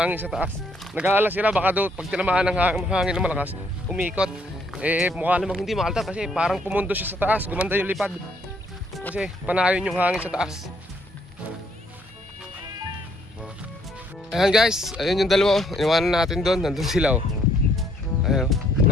sa taas. Nag-aalala sila baka doon pag tinamaan ng hangin na malakas, umikot. Eh mukha namang hindi makaltar kasi parang pumundo siya sa taas. Gumanda yung lipad. Kasi panayon yung hangin sa taas. Ayan guys, ayun yung dalawa. Iniwanan natin doon, nandun sila oh. Ayun,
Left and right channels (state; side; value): normal; both; correlation 0.68